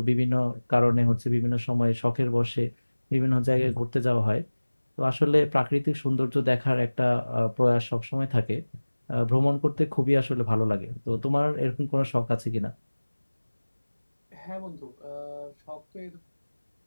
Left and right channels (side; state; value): both; inverted; correlation -1.00